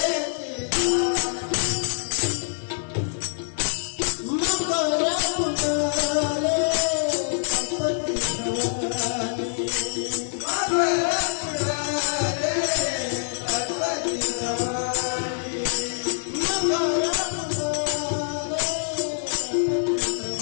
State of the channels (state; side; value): silent; right; digital silence